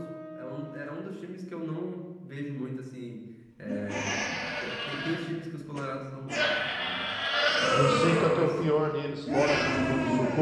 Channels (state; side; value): identical; both; correlation 1.00